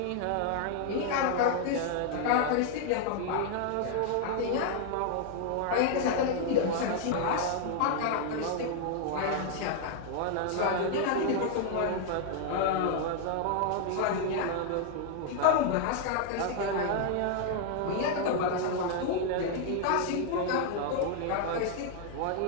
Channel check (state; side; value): different; both; correlation 0.00